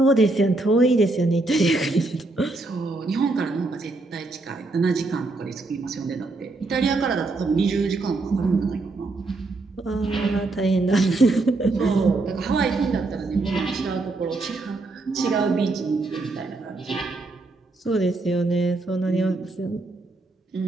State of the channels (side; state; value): left; quieter; 3.2 dB